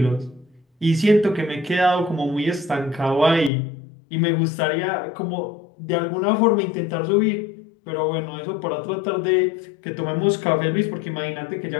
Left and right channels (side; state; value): right; drops out; at 3.5 s